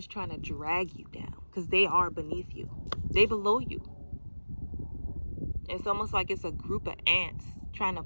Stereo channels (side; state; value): both; inverted; correlation -1.00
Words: trying to drag you down, because they are beneath you. They below you. It's almost like it's a group of ants trying to